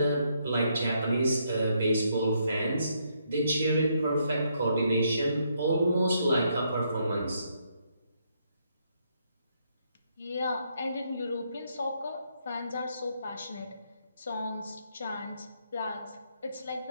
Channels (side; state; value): both; inverted; correlation -0.74